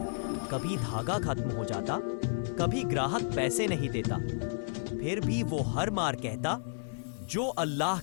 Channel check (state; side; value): silent; right; digital silence